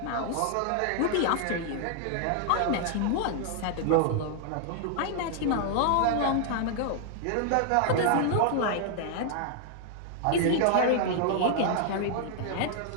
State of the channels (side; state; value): both; different; correlation 0.00